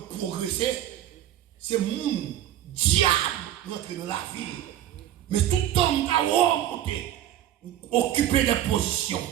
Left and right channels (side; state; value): left; quieter; 12.0 dB